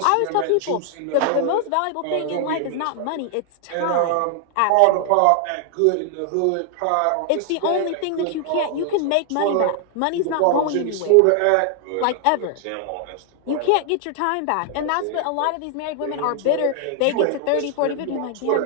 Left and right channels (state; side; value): different; both; correlation 0.00